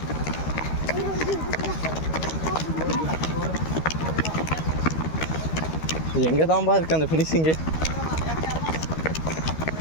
எங்கே தான்பா இருக்கு அந்த ஃபினிஷிங்கு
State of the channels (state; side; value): late; right; 13 ms